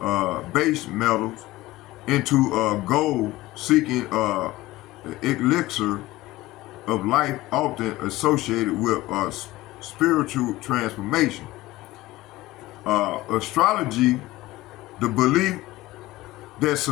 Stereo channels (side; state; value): right; quieter; 18.0 dB